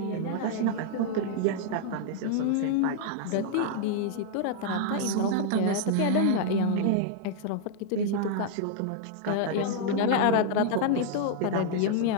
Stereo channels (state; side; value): different; both; correlation -0.01